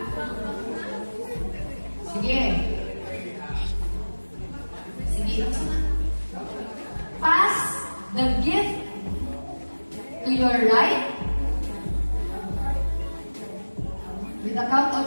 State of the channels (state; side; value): inverted; both; correlation -1.00